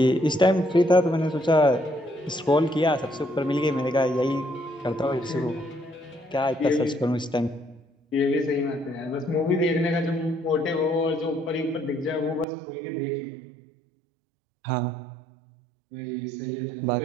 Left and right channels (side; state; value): left; drops out; at 12.5 s